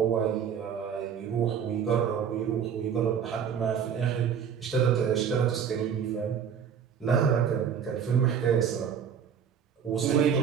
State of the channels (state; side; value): quieter; left; 7.6 dB